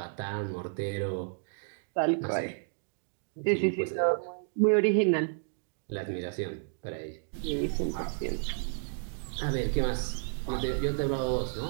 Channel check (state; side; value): silent; left; digital silence